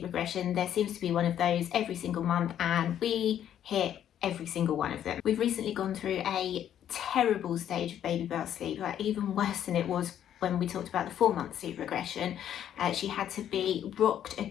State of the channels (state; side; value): quieter; right; 10.3 dB